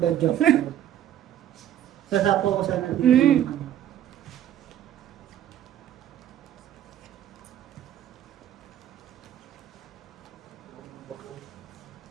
job. Sasapo ko sana dito. Mm.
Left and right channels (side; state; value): left; quieter; 11.1 dB